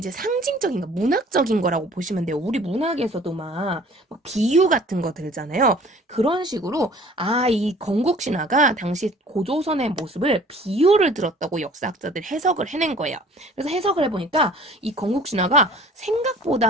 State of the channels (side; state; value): both; normal; correlation 0.50